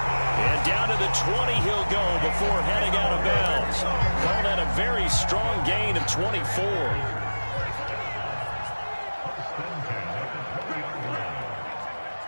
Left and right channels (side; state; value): both; inverted; correlation -1.00